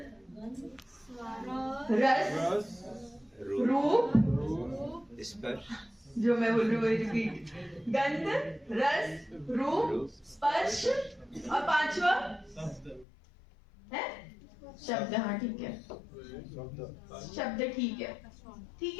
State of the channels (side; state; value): right; drops out; at 13.1 s